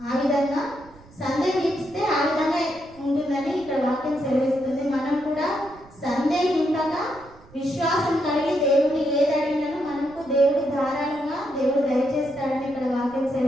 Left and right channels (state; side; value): noise; right; rumble, 24 dB below the sound